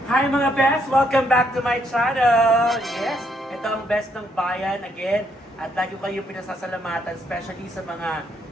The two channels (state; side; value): normal; both; correlation 0.73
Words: Hi mga best! Welcome back to my channel! Yes, ito ang best ng bayan again. At lagi ko kayo pinasasalamatan, especially sa mga